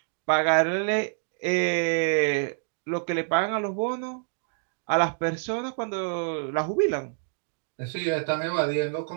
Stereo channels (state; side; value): silent; left; digital silence